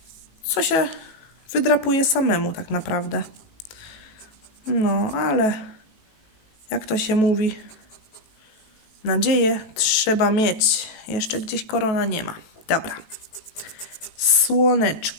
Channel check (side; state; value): right; late; 18 ms